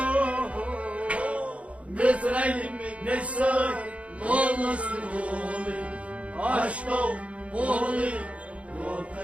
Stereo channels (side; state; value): left; late; 0.064 ms